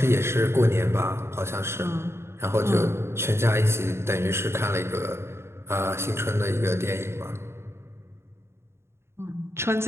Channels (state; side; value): late; left; 0.12 ms